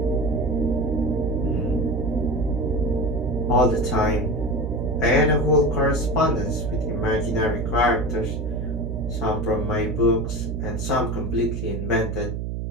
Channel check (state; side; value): noise; right; hum, 3 dB below the sound